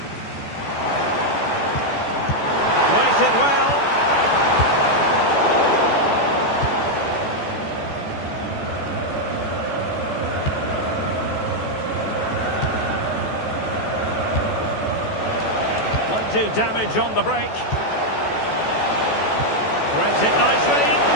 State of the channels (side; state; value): right; late; 14 ms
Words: Waited well. Might do damage on the break. Threads it nicely.